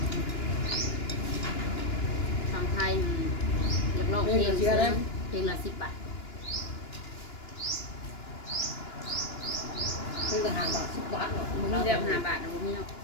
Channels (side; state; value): right; late; 2.9 ms